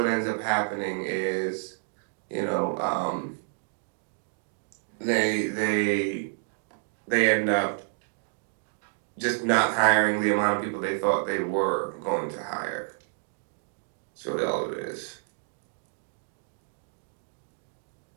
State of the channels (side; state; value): left; silent; digital silence